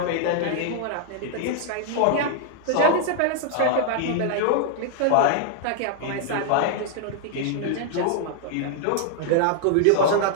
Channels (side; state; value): both; different; correlation 0.00